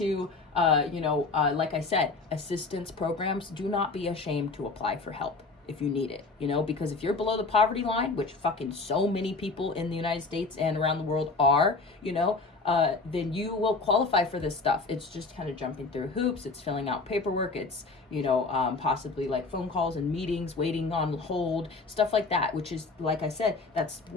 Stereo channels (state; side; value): quieter; right; 3.8 dB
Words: like I said, assistance programs, do not be ashamed to apply for help if you need it, you know, because if you're below the poverty line, which fucking so many people in the United States and around the world are, you know, then you will qualify for this stuff. It's just kind of jumping through hoops. It's filling out paperwork. It's, you know, possibly like phone calls and meetings, waiting on hold, stuff like that, which is, like I said, that's